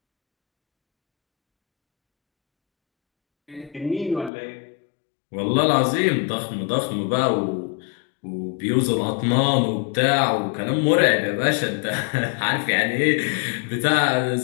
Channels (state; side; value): drops out; right; at 4.3 s